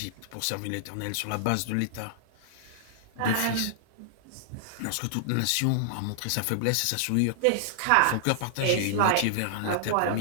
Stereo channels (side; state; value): both; different; correlation -0.01